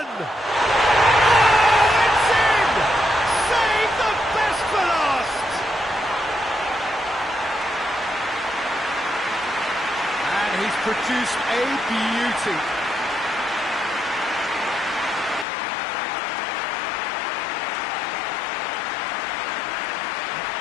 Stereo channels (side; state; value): right; drops out; at 15.5 s